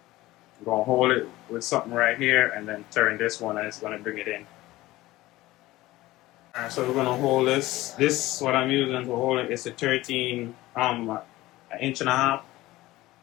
going to hold it with something right here and then turn this one and it's going to bring it in. So we're going to hold this. This, what I'm using to hold it, is a 13, an inch and a half.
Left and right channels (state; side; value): quieter; right; 17.8 dB